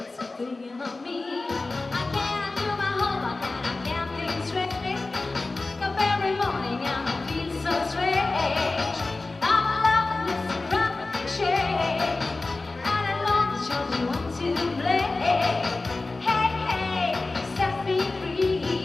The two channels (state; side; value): quieter; right; 3.4 dB